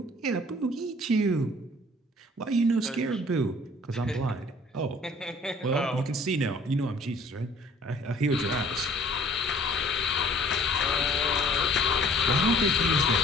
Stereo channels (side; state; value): both; normal; correlation 0.54